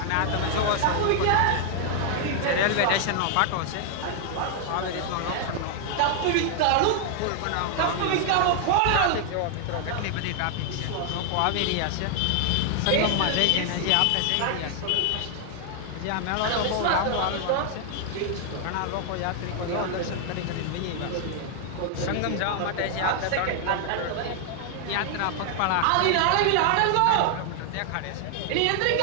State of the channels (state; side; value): different; both; correlation 0.00